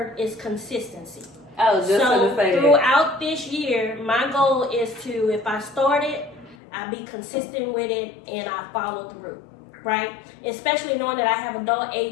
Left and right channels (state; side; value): drops out; right; at 6.6 s